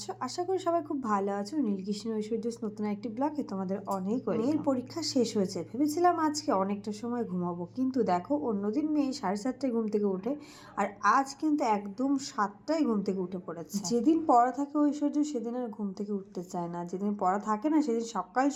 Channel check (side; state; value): both; identical; correlation 1.00